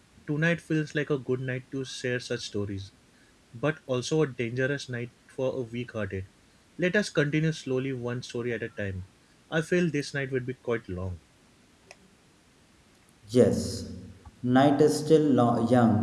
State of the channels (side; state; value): both; identical; correlation 1.00